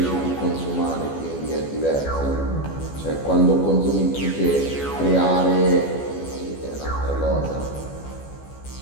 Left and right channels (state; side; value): late; right; 14 ms